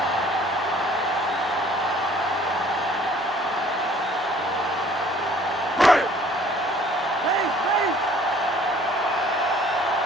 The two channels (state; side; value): normal; both; correlation 0.55